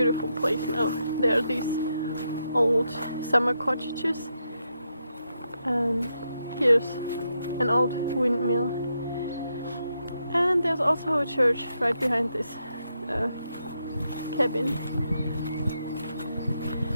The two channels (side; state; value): both; inverted; correlation -0.83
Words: place now. There are these old summer cottages, and here's an old windmill, and there's also a church right behind this cabin.